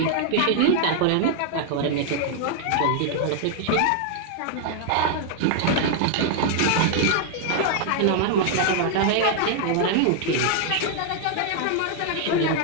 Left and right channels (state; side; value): different; both; correlation 0.00